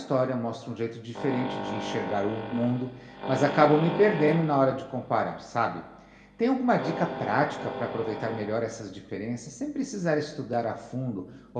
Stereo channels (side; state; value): both; identical; correlation 1.00